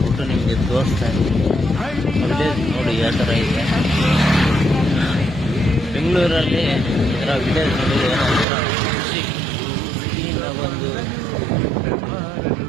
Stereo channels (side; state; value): left; drops out; at 8.5 s